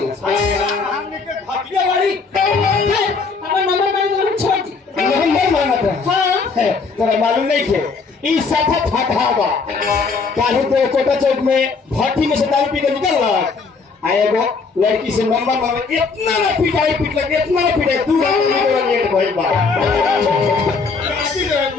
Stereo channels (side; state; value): right; quieter; 4.7 dB